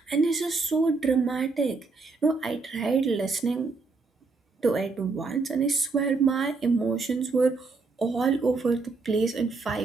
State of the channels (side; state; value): left; quieter; 4.1 dB